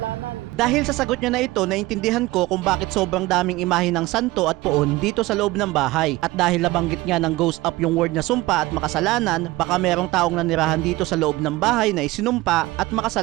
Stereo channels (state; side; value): quieter; left; 19.5 dB